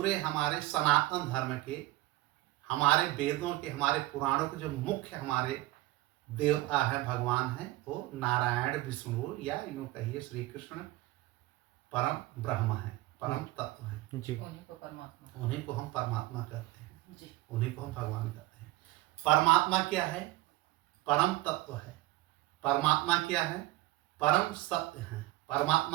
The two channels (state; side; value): quieter; left; 17.9 dB